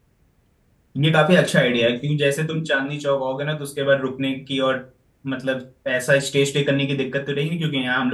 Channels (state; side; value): identical; both; correlation 1.00